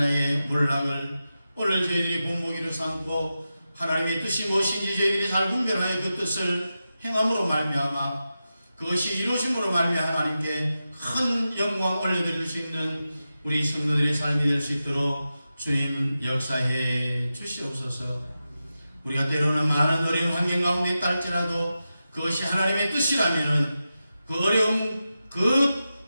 몰락을 오늘 저희들이 본보기로 삼고 하나님의 뜻이 무엇인지 저희들이 잘 분별하여 그 뜻을 행함으로 말미암아 그것이 이루어짐으로 말미암아 하나님께 큰 영광 올려드릴 수 있는 우리 성도들의 삶이 될 수 있도록 주님 역사해 주시옵소서. 우리가 때로는 많은 어려운 환경 가운데 있다 할지라도 그것이 하나님의 뜻이라면은 그 어려움 그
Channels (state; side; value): inverted; both; correlation -0.92